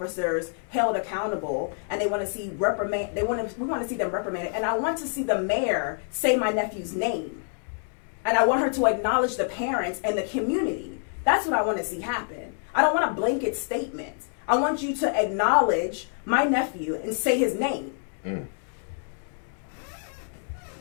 held accountable, and they want to see we want to see them reprimanded. And I want to see the mayor say my nephew's name. And I want her to acknowledge the parents and the community. That's what I want to see happen. I don't want a blanket statement. I want you to acknowledge my nephew and say his name. Mm.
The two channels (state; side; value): silent; right; 60 dB below the other